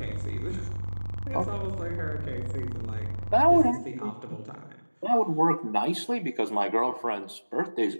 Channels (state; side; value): inverted; both; correlation -1.00